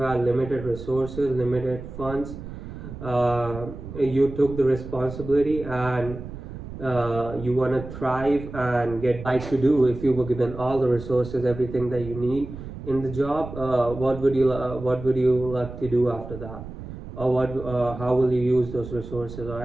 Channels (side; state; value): right; noise; rumble, 11 dB below the sound